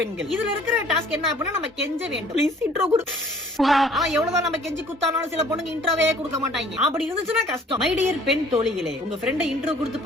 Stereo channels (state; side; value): normal; both; correlation 0.54